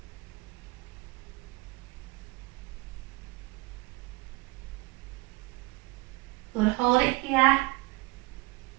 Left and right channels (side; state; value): left; quieter; 22.6 dB